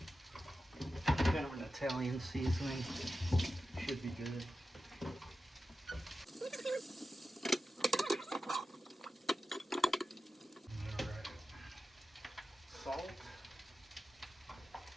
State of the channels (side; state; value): both; normal; correlation 0.92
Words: kind of an Italian seasoning. Should be good. All right. Salt.